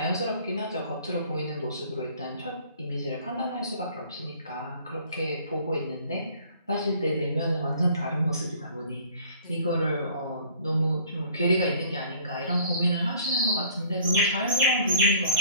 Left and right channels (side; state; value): both; inverted; correlation -0.52